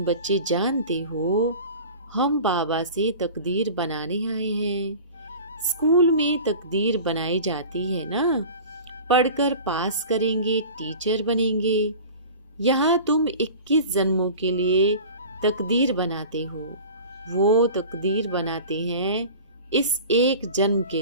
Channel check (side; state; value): both; inverted; correlation -0.38